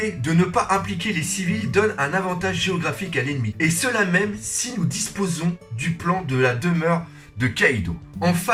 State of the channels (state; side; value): identical; both; correlation 1.00